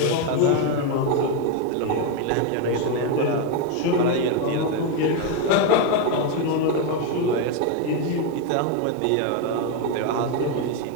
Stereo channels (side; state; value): both; different; correlation 0.02